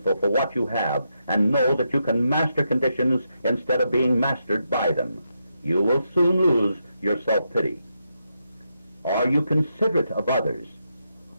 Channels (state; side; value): inverted; both; correlation -0.83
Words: for what you have, and know that you can master conditions instead of being mastered by them. You will soon lose your self-pity. Are you considerate of others?